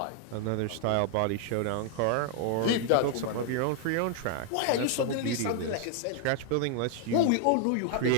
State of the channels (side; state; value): both; different; correlation 0.00